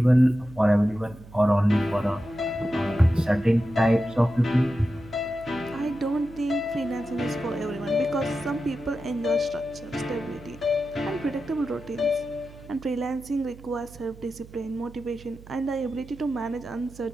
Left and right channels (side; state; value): right; noise; hum, 19 dB below the sound